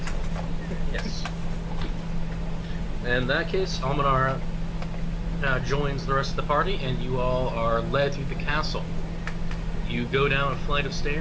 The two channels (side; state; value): both; identical; correlation 1.00